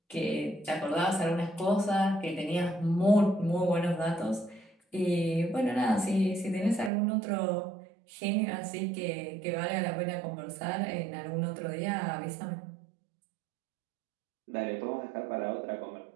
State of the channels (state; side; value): drops out; left; at 6.9 s